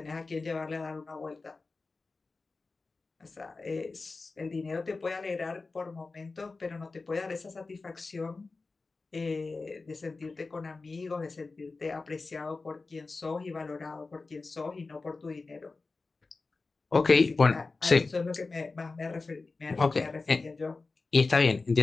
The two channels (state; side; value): quieter; right; 3.8 dB